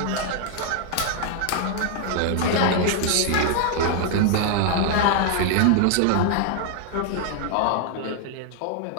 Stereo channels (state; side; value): different; both; correlation 0.00